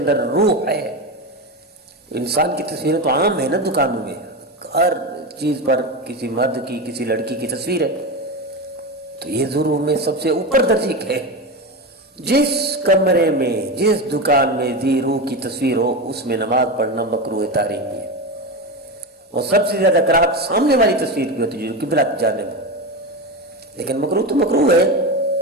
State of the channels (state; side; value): normal; both; correlation 0.19